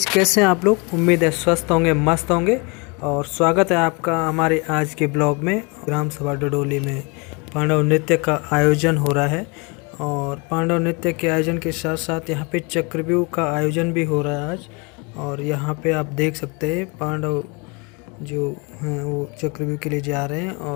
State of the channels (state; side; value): quieter; right; 30.3 dB